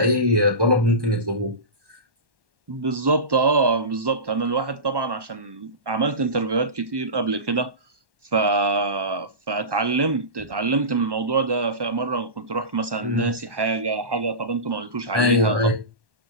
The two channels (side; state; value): left; late; 1.1 ms